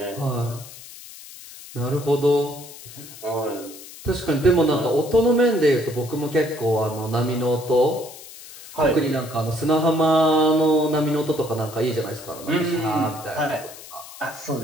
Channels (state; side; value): noise; left; hiss, 16 dB below the sound